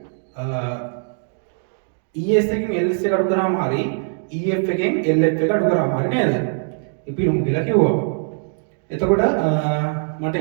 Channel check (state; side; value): silent; left; 61 dB below the other